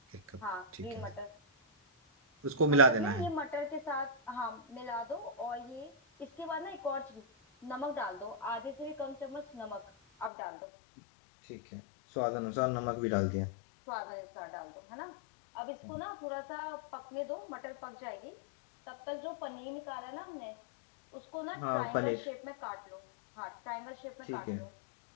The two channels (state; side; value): drops out; right; at 10.3 s